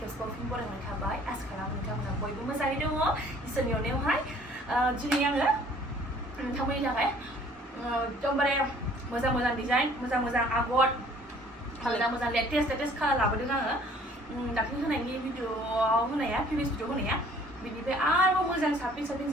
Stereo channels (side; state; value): both; normal; correlation 0.55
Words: खेबसेबाव फिन बरायनाय थाबाय। आसा खालामो नोंथांमोना बयबो मोजाङै दङ। इसोरनि अननायावहाय दिनै आङो नोंथांमोननि थाखाय एकदमबारे मोजां डिजाइन, मोजां आगर, मोजां लेटेस्ट कालार लाबोदों आङो। दाख्लै होनायनि भिडिअआव होनाया, प्रिभियास भिडिअ होनाया बिनिफ्राय आरोबाव मोजां